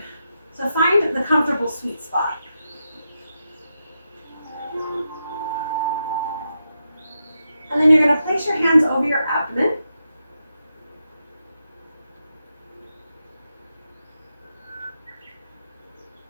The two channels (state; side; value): inverted; both; correlation -0.86